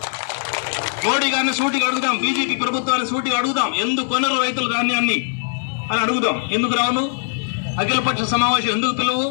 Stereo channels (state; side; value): silent; right; digital silence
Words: మోడీ గారిని సూటిగా అడుగుదాం, బీజేపీ ప్రభుత్వాన్ని సూటిగా అడుగుదాం, ఎందుకు కొనరు రైతుల ధాన్యాన్ని అని అడుగుదాం. ఎందుకు రావును? అఖిలపక్ష సమావేశం ఎందుకు పిలువు?